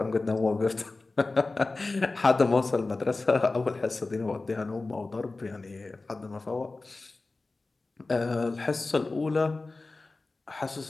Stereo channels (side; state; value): right; quieter; 3.4 dB